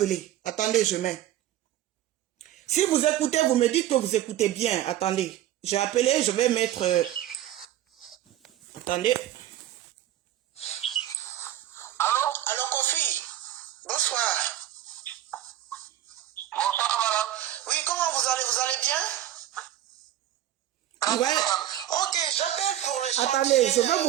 Attendez, je mets. Si vous écoutez, vous me dites que vous écoutez bien. Attendez, j'ai appelé, je vais mettre attendez. Allô, Kofi. Bonsoir. Bonsoir, madame. Oui, comment vous allez bien? Ouais. Ok, j'appelle pour le chantier. Attendez, je vais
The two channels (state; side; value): quieter; left; 12.8 dB